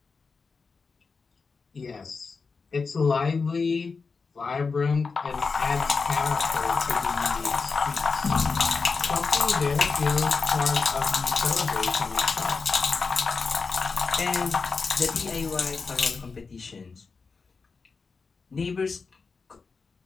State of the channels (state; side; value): quieter; right; 4.7 dB